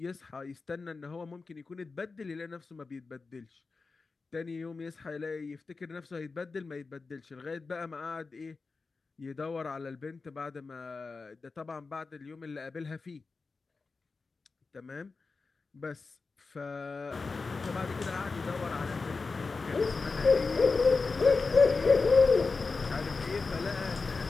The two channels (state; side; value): quieter; right; 4.2 dB